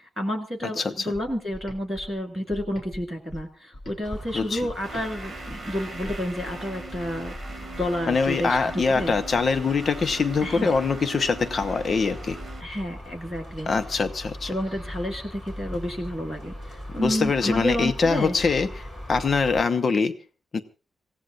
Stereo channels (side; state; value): right; quieter; 3.1 dB